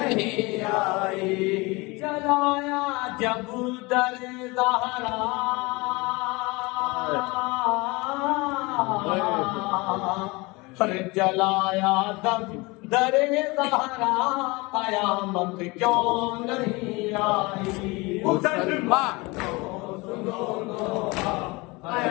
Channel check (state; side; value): quieter; right; 24.7 dB